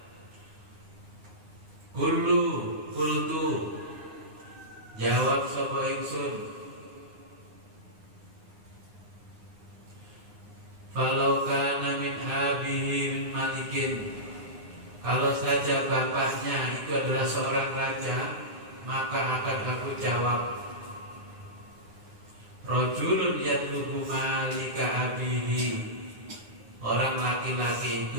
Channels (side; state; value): left; late; 9.7 ms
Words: Kultu jawab sapa ingsun, falau kana min abihi min malikin, kalau saja bapaknya itu adalah seorang raja, maka akan aku jawab, rajulun yatlubu malika abihi, orang laki-laki